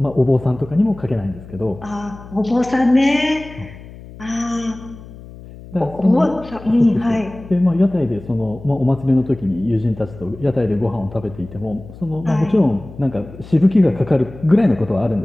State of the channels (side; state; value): left; noise; hum, 17 dB below the sound